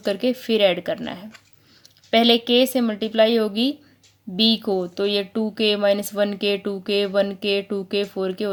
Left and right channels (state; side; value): identical; both; correlation 1.00